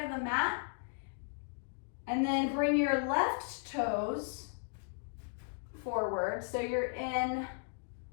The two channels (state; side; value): silent; right; digital silence